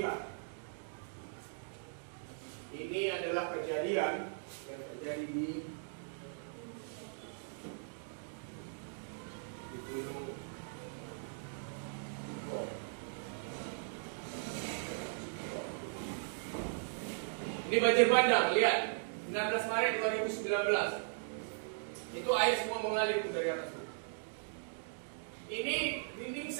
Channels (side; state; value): left; silent; digital silence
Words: Ini adalah kejadian yang terjadi di Gunung Bukit. Ini banjir bandang, lihat. 16 Maret 2019. Itu air semua mengalir dari atas. Ini dinding